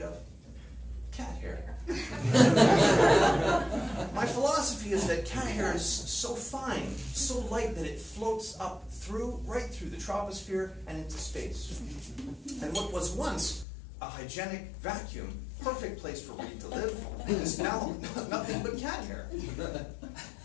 of? Cat hair. My philosophy is that cat hair is so fine, so light, that it floats up right through the troposphere and into space. And what was once a hygienic vacuum, perfect place for Reid to live, is now nothing but cat hair.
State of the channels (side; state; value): right; drops out; at 13.7 s